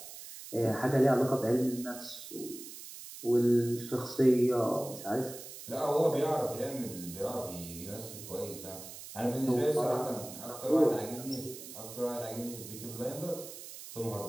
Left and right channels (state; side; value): noise; right; hiss, 13 dB below the sound